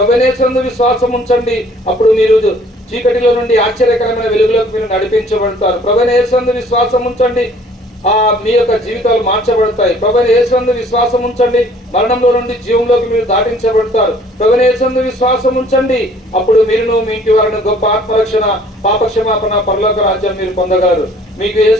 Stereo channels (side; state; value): both; normal; correlation 0.56